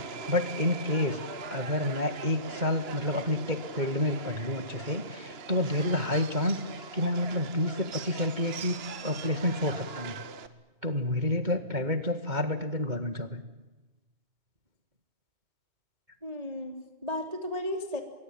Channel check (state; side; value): late; left; 2.9 ms